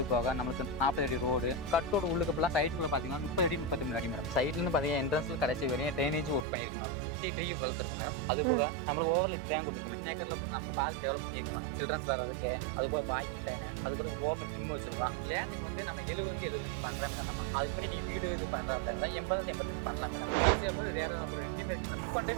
போக நம்மளுக்கு 40 அடி ரோடு, கட்டோட உள்ளுக்குலாம் சைட்டுக்குள்ள பார்த்தீங்கன்னா 30 அடி 33 அடி மேடம். சைட்லேருந்து பார்த்தீங்கன்னா என்ட்ரன்ஸ்ல கடைசி வரையும் ட்ரைனேஜ் ஒர்க் பண்ணியிருக்கோம் மேடம். சுற்றி ட்ரீ வளர்த்துருக்கும் மேடம். அது போக நம்மளுக்கு ஓவர்ல ட்ரேன் கொடுத்துருக்கோம். இன்னேக்கரில் நம்ம பார்க் டெவலப் பண்ணியிருக்கோம் மேடம். சில்ட்ரன்ஸ் வர்றதுக்கு, அது போக வாக்கிங் டைனு, அதுக்கு ஓப்பன் ஜிம் வச்சிருக்கோம். லேண்டுக்கு வந்து நம்ம 70 பண்ணுறேன் மேடம். நம்ம அதுக்கு மாதிரி நீங்கள் வீடு இது பண்ணுறா அப்படின்னா 80 பண்ணலாம் மேடம். ஈஸியாக அப்புறம் ரேராக அப்புறம் ரெண்டுமே இருக்கு மேடம். இப்போ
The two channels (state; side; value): drops out; left; at 6.5 s